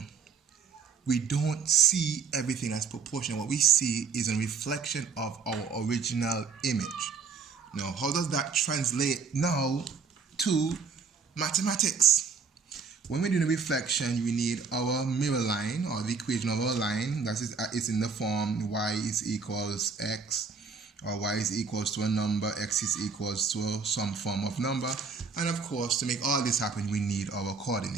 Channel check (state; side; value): quieter; left; 5.3 dB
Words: we don't see everything as proportional. What we see is a reflection of our original image. Now, how does that translate now to mathematics? When we're doing a reflection, we need our mirror line, or the equation of our line. That is, it's in the form y is equals x, or y is equals to a number, x is equals to some form of number. And of course, to make all this happen, we need our